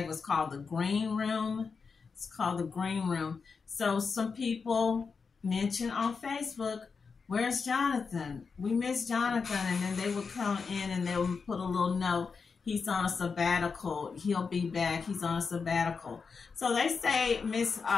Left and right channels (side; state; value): right; quieter; 5.2 dB